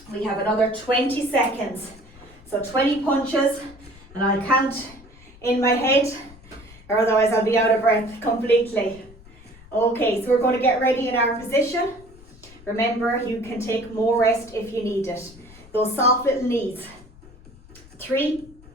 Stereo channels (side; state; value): left; noise; rumble, 22 dB below the sound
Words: We have another 20 seconds. So 20 punches, and I'll count in my head, or otherwise I'll be out of breath completely. Okay, so we're going to get ready in our position. Remember, you can take more rest if you need it. Those soft little knees. 3,